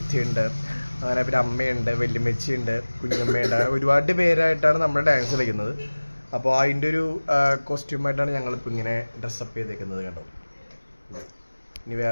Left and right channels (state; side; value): inverted; both; correlation -1.00